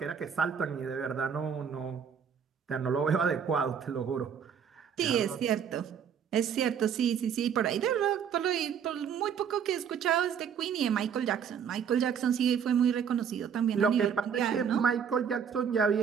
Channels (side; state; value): left; quieter; 7.6 dB